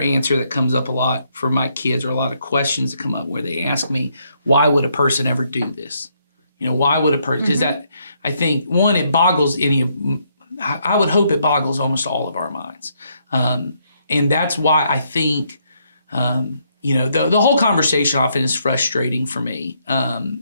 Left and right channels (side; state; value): both; inverted; correlation -0.73